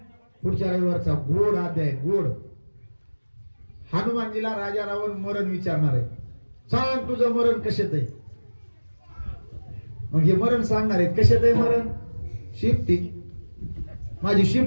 पुढच्या रविवारचा गोड अध्याय गोड. हनुमानजीला राजा रावण मरण विचारणार आहे. सांग तुझं मरण कशात आहे. मग हे मरण सांगणार आहेत कशात आहे मरण. शिफ्टी माझी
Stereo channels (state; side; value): inverted; both; correlation -1.00